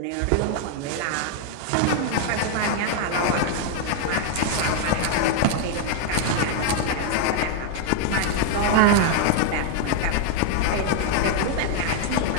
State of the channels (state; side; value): different; both; correlation 0.00